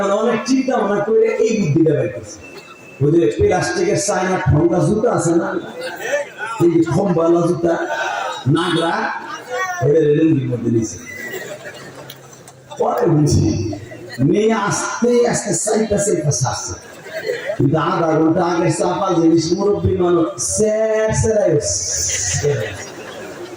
অনেক চিন্তা ভাবনা করে এই বুদ্ধিটা বের করছে। ওই যে প্লাস্টিকের চায়না ঠোঙ্গা জুতা আছে না, এই যে খম্বালা জুতা নাগরা, এদের লুঙ্গির মধ্যে দিয়েছে। পরে বুঝছি মেয়ে আস্তে আস্তে চাইতেছে, আসছে, কিন্তু আধা ঘন্টা আগে চাপা জিনিস মুরব্বী মানুষ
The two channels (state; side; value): identical; both; correlation 1.00